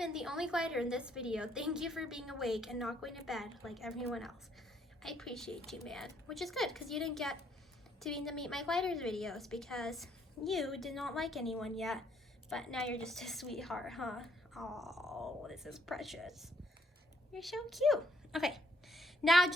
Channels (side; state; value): both; normal; correlation 0.69